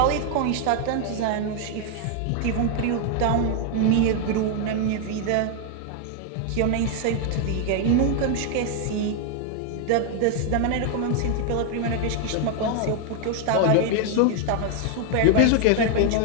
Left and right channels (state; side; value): different; both; correlation 0.00